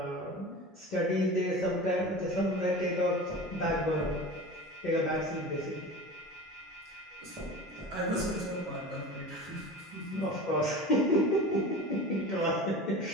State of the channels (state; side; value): normal; both; correlation 0.34